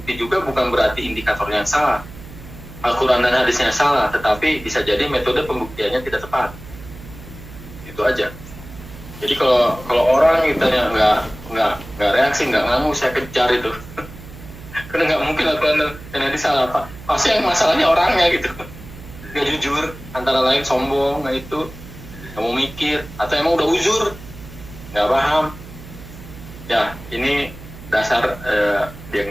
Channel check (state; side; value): noise; right; hum, 16 dB below the sound